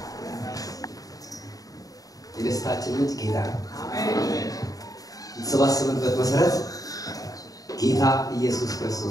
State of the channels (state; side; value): late; right; 0.18 ms